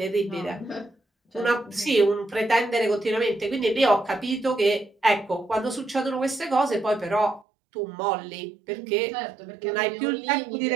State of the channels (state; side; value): drops out; left; at 7.5 s